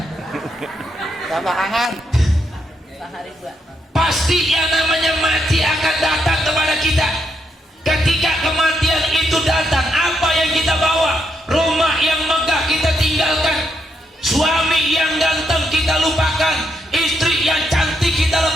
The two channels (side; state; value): both; normal; correlation 0.79